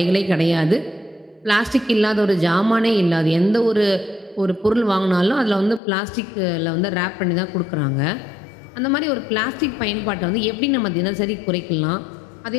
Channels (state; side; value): drops out; right; at 5.8 s